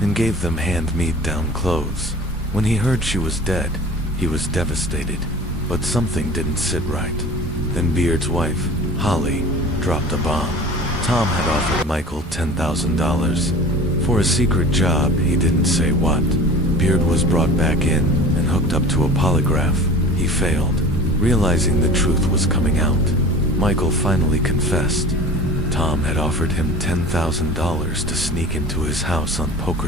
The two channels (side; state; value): both; normal; correlation 0.40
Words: gave them hand-me-down clothes. When he heard she was dead, he was devastated, but something didn't sit right. Then Beard's wife, Holly, dropped a bomb. Tom had offered Michael $10,000 for a secret job, he didn't say what. Beard was brought back in and hooked up to a polygraph. He failed, realizing the truth was coming out. Michael finally confessed. Tom had offered him $10,000 to sneak into his house on